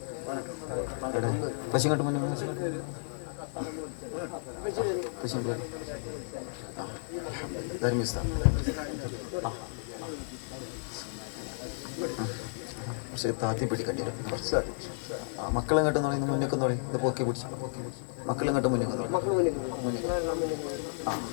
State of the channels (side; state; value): right; silent; digital silence